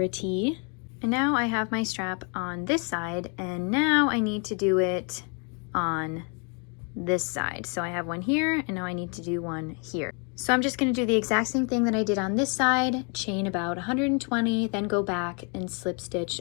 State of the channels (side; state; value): right; quieter; 36.6 dB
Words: And now I have my strap on this side, and now I need to do it on this side. So I have one here, and now I need to do one here. So I'm just going to do the exact same thing that I did on this side, chain about 120, then go back and slip stitch